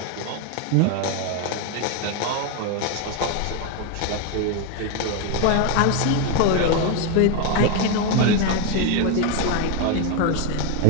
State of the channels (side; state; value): both; different; correlation 0.02